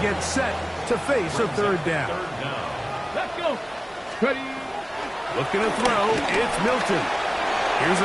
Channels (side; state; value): right; noise; hum, 29 dB below the sound